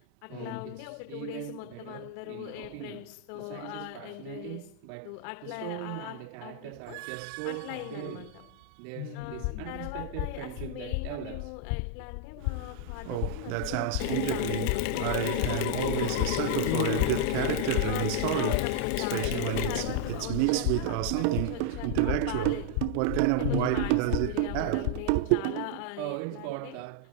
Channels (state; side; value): different; both; correlation -0.01